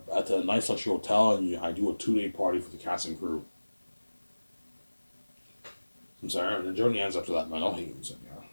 the Nice Luxury Hotel, and I do a 2-day party for the cast and crew. I'm sorry, and the journey ends after that, man. I'll hate you, yeah.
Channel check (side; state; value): both; inverted; correlation -1.00